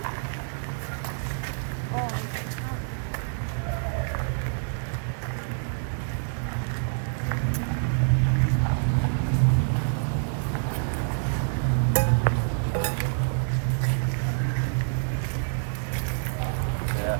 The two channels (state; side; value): silent; left; digital silence